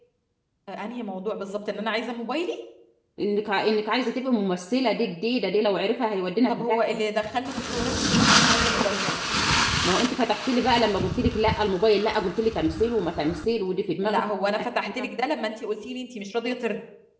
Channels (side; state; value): both; identical; correlation 1.00